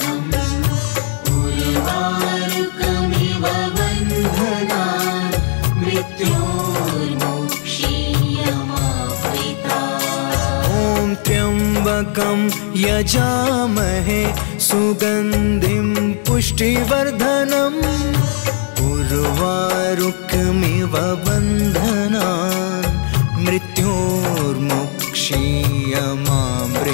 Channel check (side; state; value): right; silent; 64 dB below the other